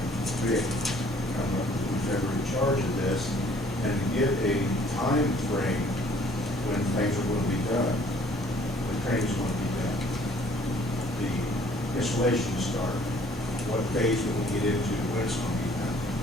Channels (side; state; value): both; normal; correlation 0.58